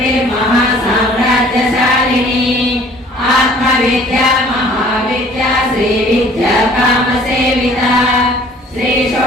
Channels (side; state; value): both; normal; correlation 0.53